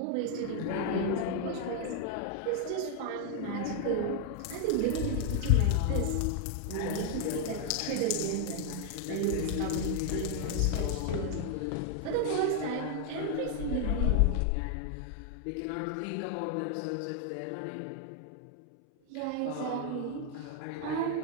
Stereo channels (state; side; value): different; both; correlation 0.00